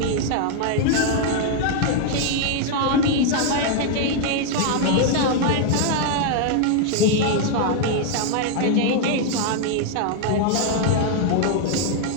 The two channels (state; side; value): different; both; correlation 0.00